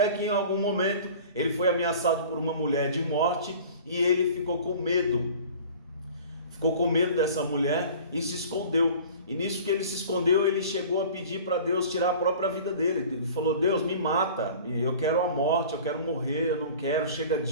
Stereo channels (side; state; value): both; inverted; correlation -0.43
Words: que em algum momento ele foi ameaçado por uma mulher de morte, e ele ficou com medo dessa mulher e se escondeu. E nisso que ele se escondeu, ele chegou a pedir para Deus tirar a própria vida dele. Ele falou: Deus, me mata, eu quero a morte, eu quero morrer, eu não quero, chega